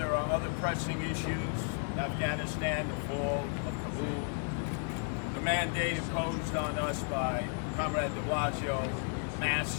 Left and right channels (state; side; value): silent; right; 55 dB below the other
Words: are other pressing issues, Afghanistan, the fall of Kabul, the mandate imposed on us by Comrade de Blasio, masks